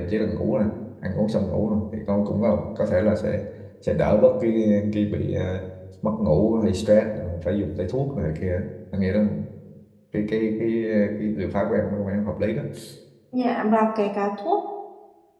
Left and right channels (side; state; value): both; identical; correlation 1.00